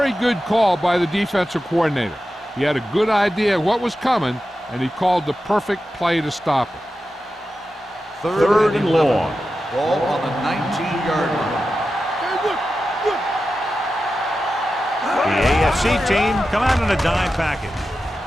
good call by the defensive coordinator. He had a good idea of what was coming, and he called the perfect play to stop it. Third and long. Ball on the 19-yard line. The AFC team come out in a dime package.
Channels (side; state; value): both; normal; correlation 0.92